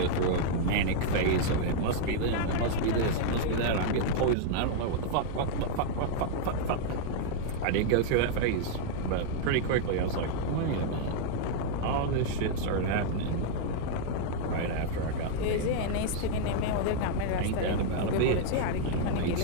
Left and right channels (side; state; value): both; different; correlation 0.00